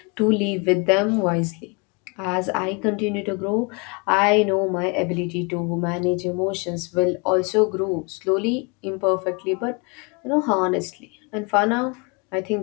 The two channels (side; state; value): right; quieter; 31.6 dB